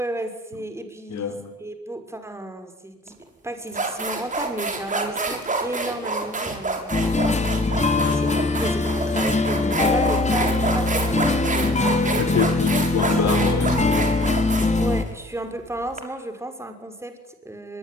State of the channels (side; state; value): both; normal; correlation 0.51